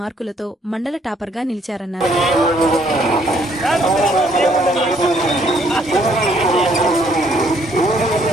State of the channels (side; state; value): both; normal; correlation 0.66